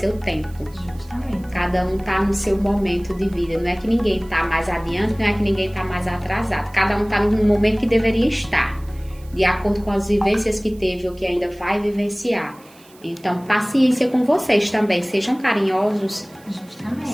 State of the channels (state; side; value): noise; right; hiss, 26 dB below the sound